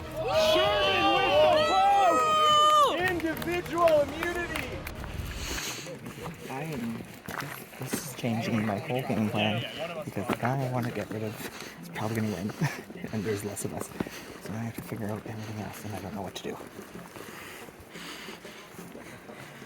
Sherman with the post! Individual immunity. This is changing my whole game plan because the guy I want to get rid of is probably going to win, and there's less of us. So now I have to figure out everything else, and I don't know what to do.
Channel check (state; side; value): identical; both; correlation 1.00